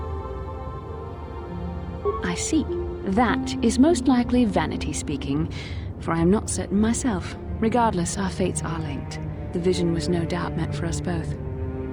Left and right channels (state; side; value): identical; both; correlation 1.00